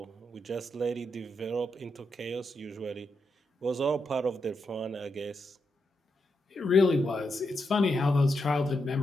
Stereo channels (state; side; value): normal; both; correlation 0.84